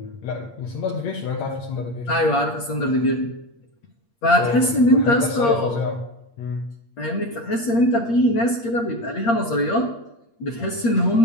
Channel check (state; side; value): late; right; 8.6 ms